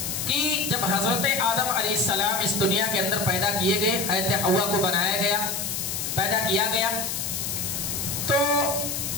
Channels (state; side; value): noise; left; hiss, 3 dB below the sound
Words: کہ جب حضرت آدم علیہ السلام اس دنیا کے اندر پیدا کیے گئے، حضرت حوا کو بنایا گیا، پیدا کیا گیا، تو